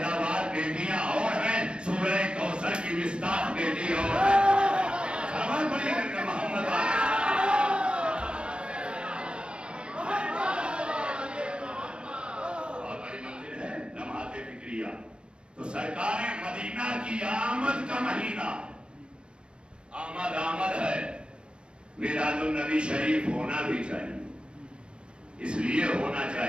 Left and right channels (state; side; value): late; left; 0.056 ms